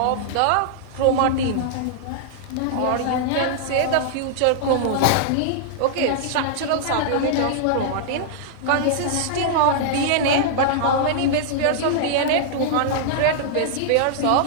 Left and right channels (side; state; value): both; different; correlation -0.01